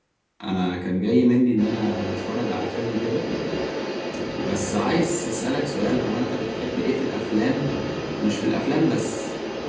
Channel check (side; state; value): both; identical; correlation 1.00